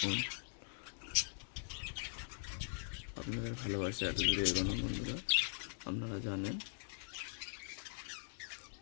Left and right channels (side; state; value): right; silent; digital silence